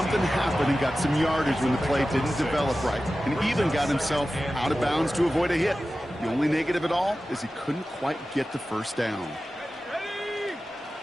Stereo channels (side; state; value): both; normal; correlation 0.94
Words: happen and got some yardage when the play didn't develop right, and even got himself out of bounds to avoid a hit. The only negative at all is he couldn't quite get the 1st down.